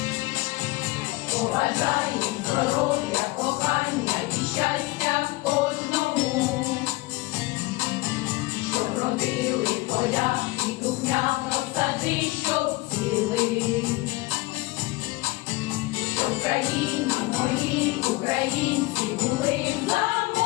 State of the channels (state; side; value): quieter; right; 21.8 dB